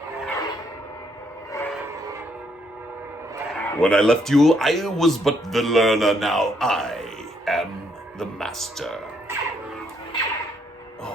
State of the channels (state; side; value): normal; both; correlation 0.72